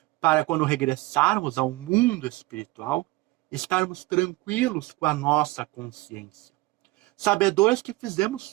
Para quando regressarmos ao mundo espiritual, estarmos tranquilos com a nossa consciência, sabedores que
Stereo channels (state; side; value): quieter; left; 20.5 dB